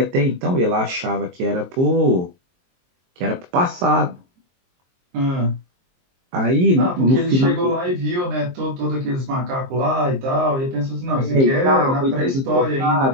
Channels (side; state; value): left; late; 23 ms